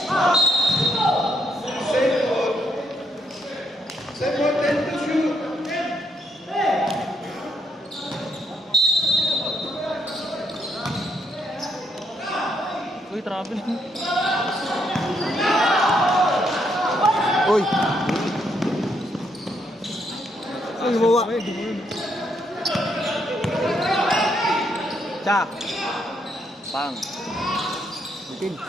Same one, 10 to shoot. Uy! Uy, mawa! Tsak! Pang! Bitin.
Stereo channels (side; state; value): both; normal; correlation 0.74